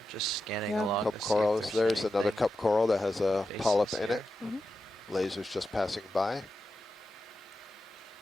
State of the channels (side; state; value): both; normal; correlation 0.90